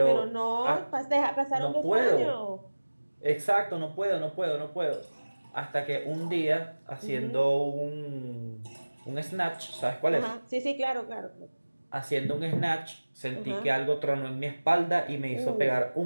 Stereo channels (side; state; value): both; inverted; correlation -1.00